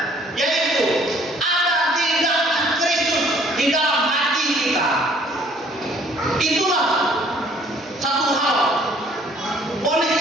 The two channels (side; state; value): both; normal; correlation 0.58